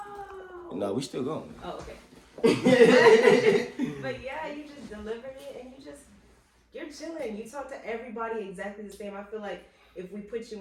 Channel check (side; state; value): both; identical; correlation 1.00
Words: No, we still going. Oh, okay. But yeah, you just delivered it, and you're chilling. You talk to everybody exactly the same. I feel like if we put you